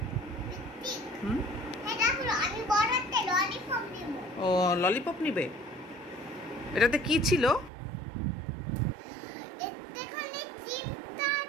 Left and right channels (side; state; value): left; drops out; at 7.7 s